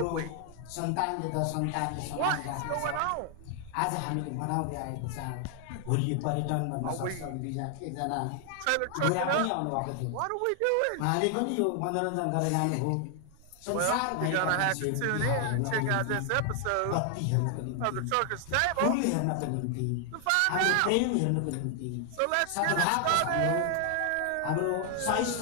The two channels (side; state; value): both; different; correlation 0.00